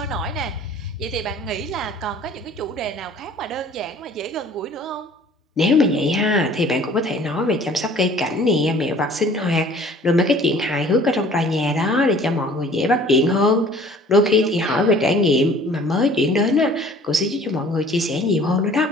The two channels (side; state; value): both; normal; correlation 0.51